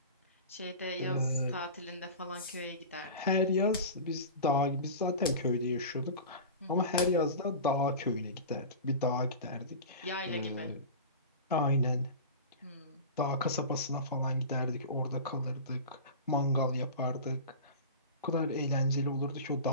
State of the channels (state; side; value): inverted; both; correlation -0.32